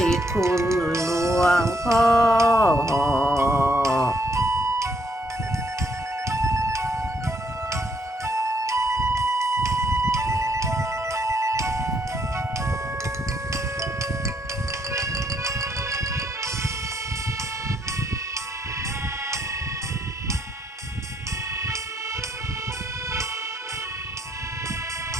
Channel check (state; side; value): normal; both; correlation 0.72